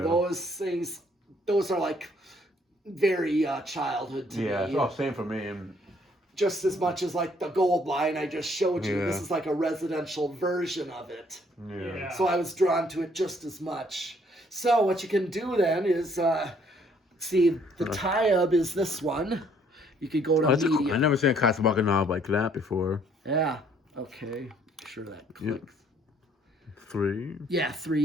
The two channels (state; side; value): normal; both; correlation 0.64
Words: things, those are very childhood to me. Yeah, same for me. Just as much as the gold line I just showed you. This is a residential version of it. Yeah. So I was drawn to it just as much. So what you can do then is see the Tayub is this one. You could go to medium. Cool. I never seen a Casablanca knob like that before. Yeah. Okay. Sure that clicks. 3. Yeah,